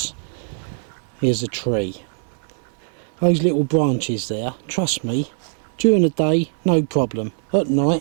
Here's a tree. Those little branches there, trust me, during the day, no problem. At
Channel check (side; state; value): left; silent; 64 dB below the other